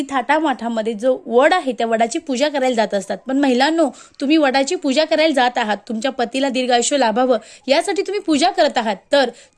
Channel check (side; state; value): both; identical; correlation 1.00